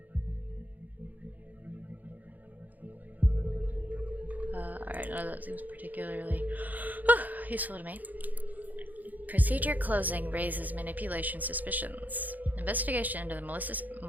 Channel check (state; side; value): late; left; 0.082 ms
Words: Alright, none of that seems particularly useful to me. Procedure closing raises manipulation suspicions. Investigation into the